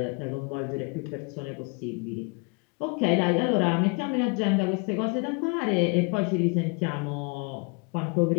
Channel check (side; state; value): right; quieter; 31.9 dB